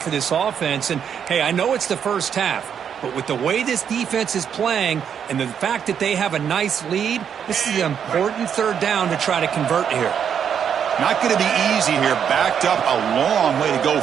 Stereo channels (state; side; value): quieter; left; 8.0 dB